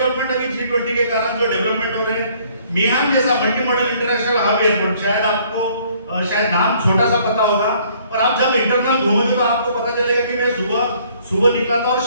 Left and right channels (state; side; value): inverted; both; correlation -0.61